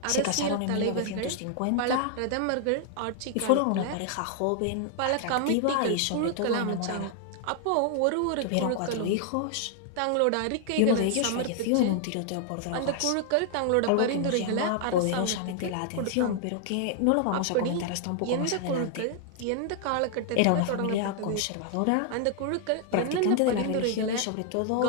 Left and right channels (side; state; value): both; different; correlation 0.00